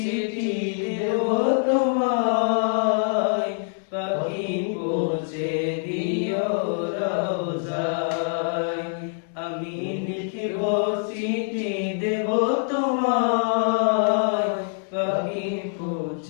দেব তোমায়, পাখি পৌঁছে দিও রোজায়। আমি লিখিব চিঠি দেব তোমায়, পাখি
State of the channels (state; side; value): silent; right; digital silence